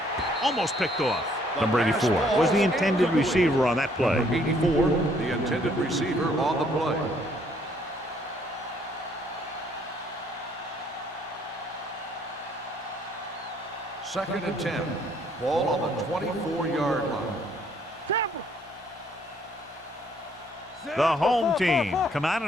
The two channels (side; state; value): both; normal; correlation 0.65